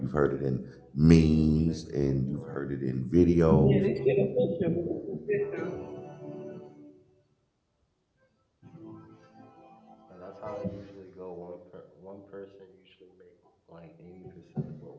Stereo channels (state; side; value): identical; both; correlation 1.00